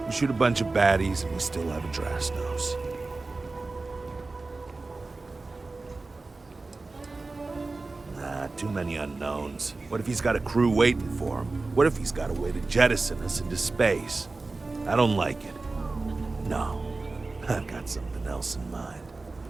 we shoot a bunch of baddies and we still have a Drastos. Nah, too many unknowns. What if he's got a crew waiting for him? What if he's got a way to jettison us into space? I don't like it. No, I've got something else in mind.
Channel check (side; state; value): left; quieter; 3.5 dB